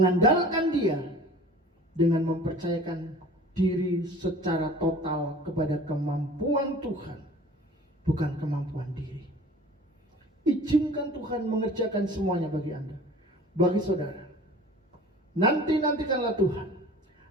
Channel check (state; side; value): normal; both; correlation 0.45